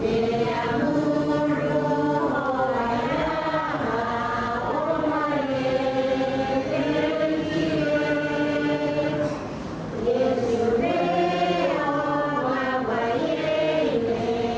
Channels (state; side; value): identical; both; correlation 1.00